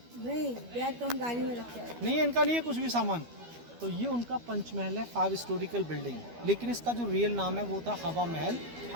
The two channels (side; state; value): left; late; 12 ms